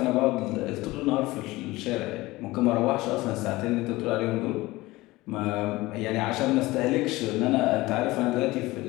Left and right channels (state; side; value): quieter; right; 19.7 dB